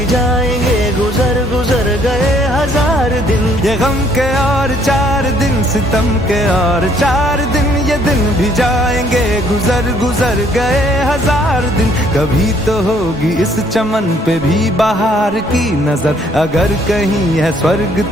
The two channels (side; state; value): both; normal; correlation 0.64